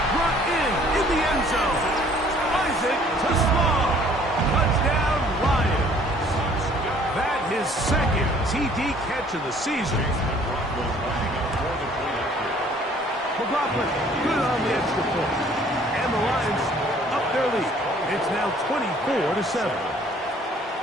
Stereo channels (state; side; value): normal; both; correlation 0.57